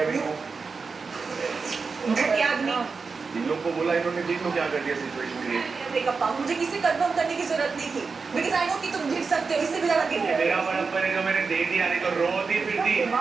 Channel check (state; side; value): quieter; left; 4.8 dB